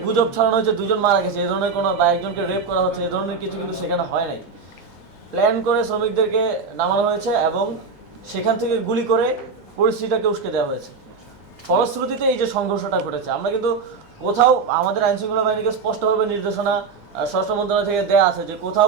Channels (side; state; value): left; quieter; 5.0 dB